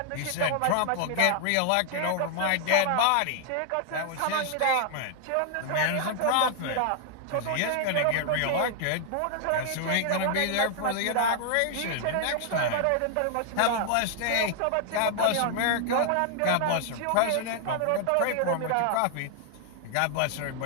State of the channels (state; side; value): different; both; correlation 0.00